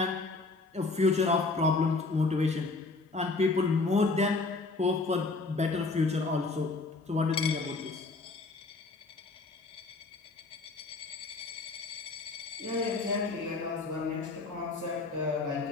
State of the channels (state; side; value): quieter; right; 3.7 dB